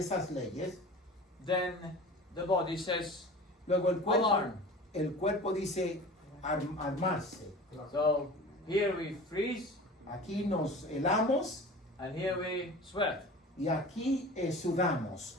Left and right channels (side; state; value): both; normal; correlation 0.38